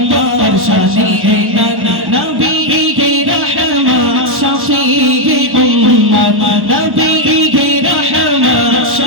শানে নানা নবী গে রহমত শফিয়ে উম্মত নবী গে রহমত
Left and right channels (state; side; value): late; left; 1.1 ms